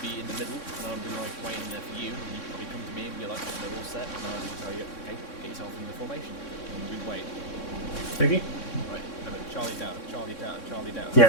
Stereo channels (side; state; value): right; late; 3.6 ms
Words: be in the middle, and I would be like waiting there for you, and you'd probably come to me and be like, they're all set, and I would tell you, okay, get yourself in the formation, and we'd wait. Okay. Right, remember, Charlie down, Charlie down, Charlie down.